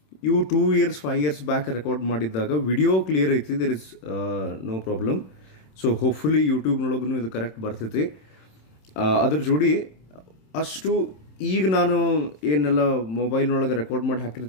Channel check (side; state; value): right; late; 27 ms